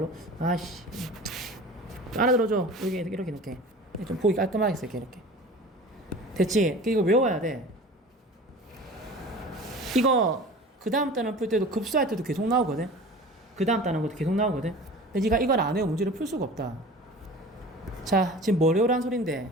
아씨. 알아들어줘. 여기 이렇게 좀 보기 깔끔하게 쓸게 이렇게. 됐지? 이거 외워야 돼. 이거 그 다음 단원 풀 때도 급수할 때도 계속 나오거든. 그 다음 단원 것도 계속 나오거든. 근데 네가 이걸 안 외우면 문제를 풀 수가 없다. 자, 지금 뭘 외우라는 소린데?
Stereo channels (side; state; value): both; normal; correlation 0.39